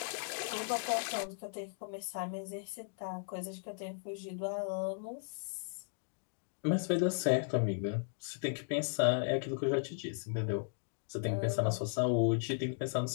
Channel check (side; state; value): right; silent; digital silence